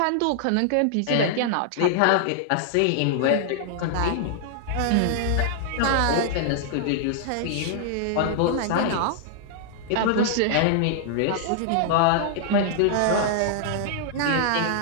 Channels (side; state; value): both; different; correlation -0.01